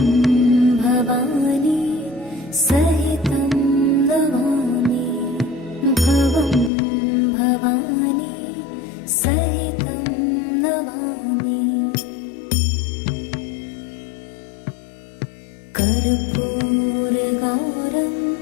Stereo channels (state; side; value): drops out; right; at 6.7 s